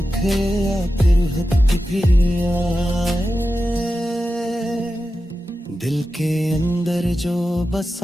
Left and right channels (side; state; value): both; normal; correlation 0.92